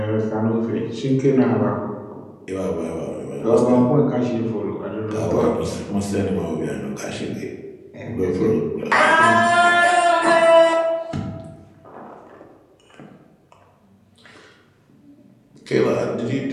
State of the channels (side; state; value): both; identical; correlation 1.00